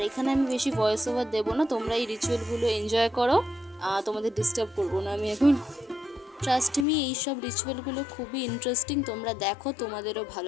এখানে আমি বেশি ভয়েস ওভার দেবো না, তোমরা এই রিচুয়ালগুলো এনজয় করো, তোমাদের ডিস্টার্ব করবো না আমি এখন। ট্রাস্ট মি, এইসব রিচুয়ালগুলো খুবই ইন্টারেস্টিং, তোমরা দেখো, তোমাদেরও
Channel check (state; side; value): drops out; right; at 6.9 s